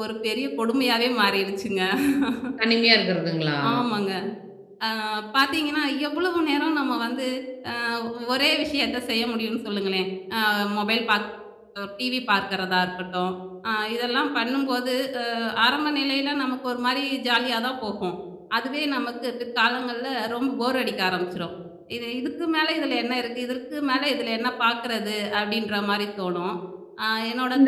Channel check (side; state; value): both; identical; correlation 1.00